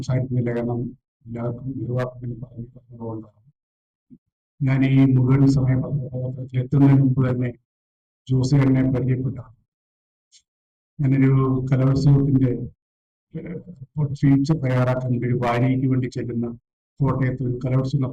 കാരണം എല്ലാവർക്കും നിർവാഹത്തിൽ പറഞ്ഞുകൊണ്ടാണ്. ഞാൻ ഈ മുഴുവൻ സമയ പത്രത്തിൽ എത്തുന്നതിന് മുമ്പ് തന്നെ ജോസേട്ടനെ പരിചയപ്പെട്ടാണ്. ഞാനൊരു കലോത്സവത്തിന്റെ ഫീച്ചർ തയ്യാറാക്കാൻ ഒരു വാരികയ്ക്ക് വേണ്ടി ചെല്ലുന്ന കോട്ടയത്ത് ഒരു കലോത്സവം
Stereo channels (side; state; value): both; identical; correlation 1.00